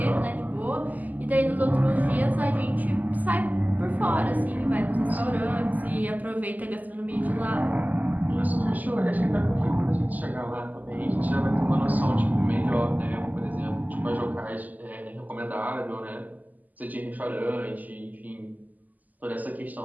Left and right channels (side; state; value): left; late; 0.081 ms